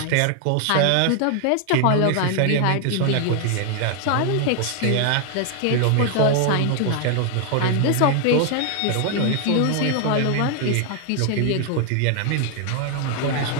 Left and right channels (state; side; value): different; both; correlation 0.00